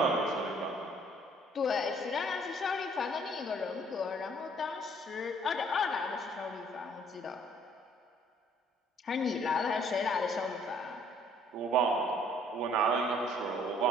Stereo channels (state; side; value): normal; both; correlation 0.60